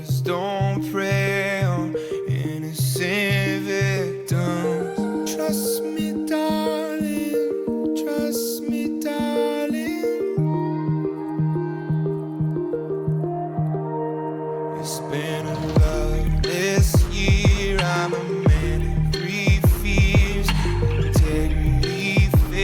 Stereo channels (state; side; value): identical; both; correlation 1.00